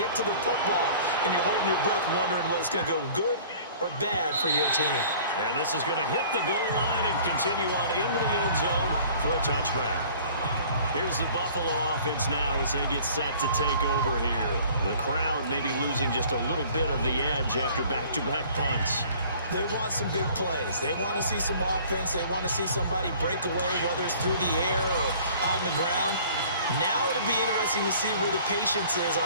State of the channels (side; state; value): both; inverted; correlation -0.50